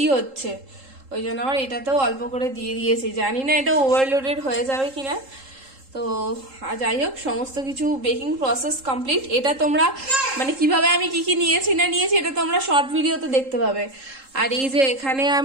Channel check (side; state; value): left; late; 3.7 ms